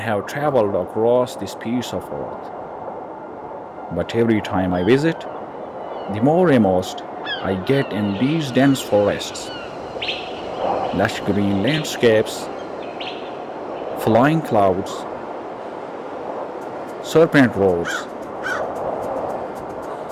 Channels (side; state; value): both; identical; correlation 1.00